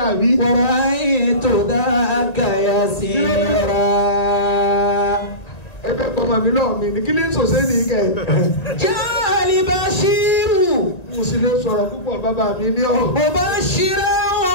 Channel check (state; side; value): late; right; 1.9 ms